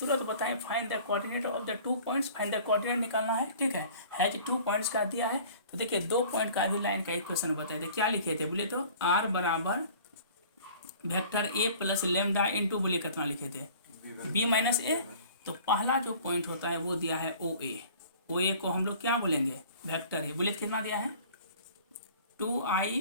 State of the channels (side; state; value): both; inverted; correlation -0.48